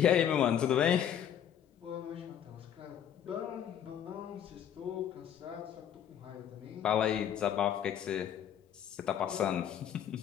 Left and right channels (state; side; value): quieter; right; 9.6 dB